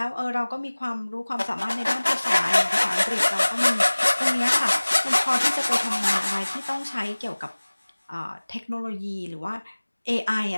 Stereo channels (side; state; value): both; inverted; correlation -1.00